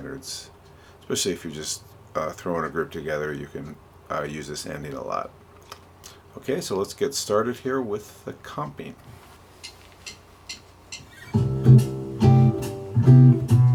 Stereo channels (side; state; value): both; identical; correlation 1.00